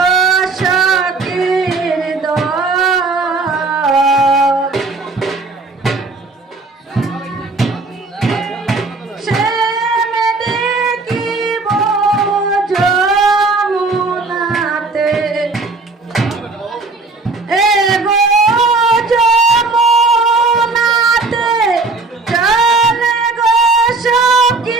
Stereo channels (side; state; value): left; quieter; 3.6 dB